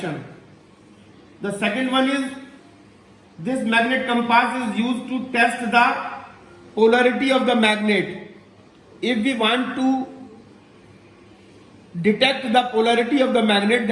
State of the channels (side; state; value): both; identical; correlation 1.00